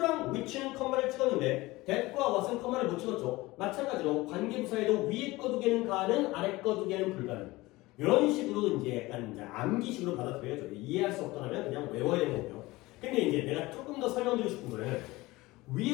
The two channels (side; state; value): right; quieter; 20.3 dB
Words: which는 컴마를 찍었는데 that과 what은 컴마를 못 찍었죠. 마찬가지로 관계부사에도 위에 거 두 개는 가능, 아래 거 두 개는 불가능. 이런 식으로 이제 약간 이제 암기식으로 받아들여야죠. 이해할 수 없다면 그냥 외워야 되는 거고요. 근데 이제 내가 조금 더 설명드리고 싶은 거는